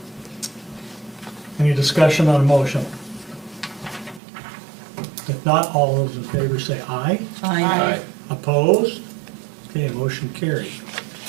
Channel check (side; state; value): left; drops out; at 4.2 s